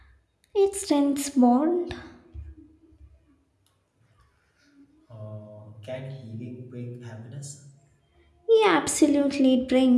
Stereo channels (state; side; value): identical; both; correlation 1.00